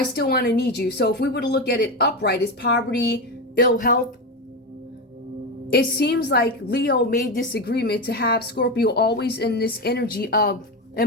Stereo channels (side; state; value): both; normal; correlation 0.16